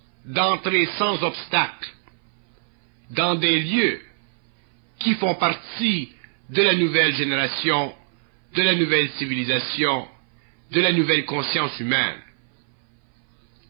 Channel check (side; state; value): left; silent; 58 dB below the other